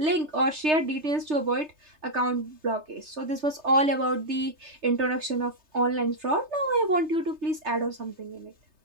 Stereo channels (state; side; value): late; left; 3.3 ms